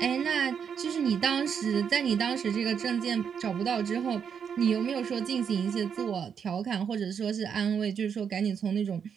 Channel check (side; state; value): left; quieter; 7.3 dB